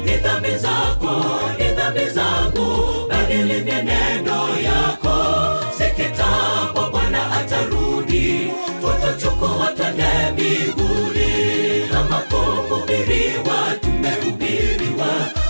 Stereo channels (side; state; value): both; inverted; correlation -1.00